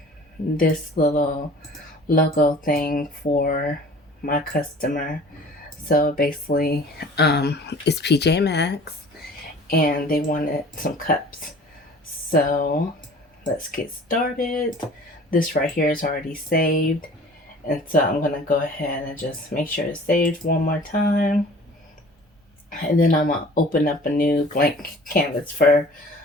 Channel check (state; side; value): normal; both; correlation 0.47